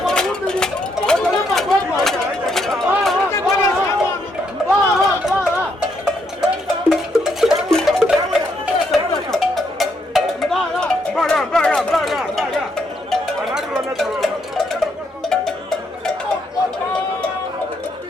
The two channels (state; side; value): normal; both; correlation 0.75